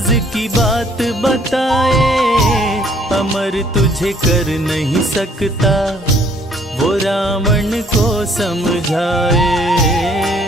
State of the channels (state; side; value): normal; both; correlation 0.62